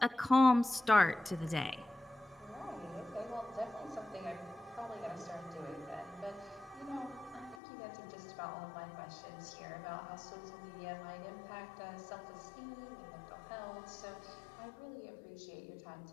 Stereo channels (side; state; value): right; drops out; at 7.6 s